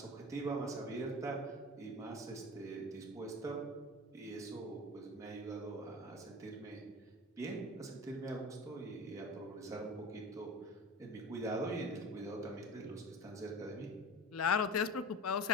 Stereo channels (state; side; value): normal; both; correlation 0.33